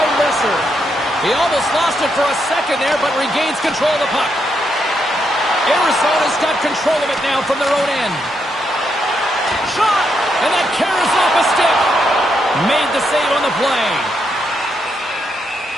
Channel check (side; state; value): both; normal; correlation 0.80